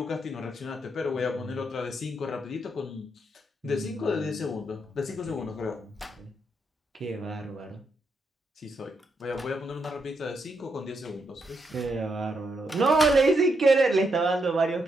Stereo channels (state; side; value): normal; both; correlation 0.80